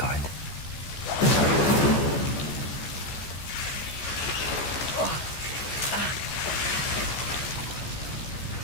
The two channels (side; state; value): right; late; 14 ms